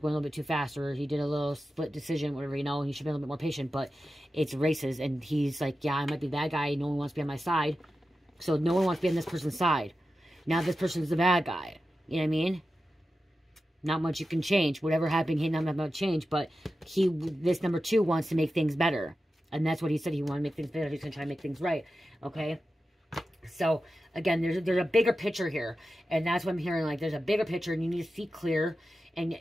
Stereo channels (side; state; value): both; normal; correlation 0.92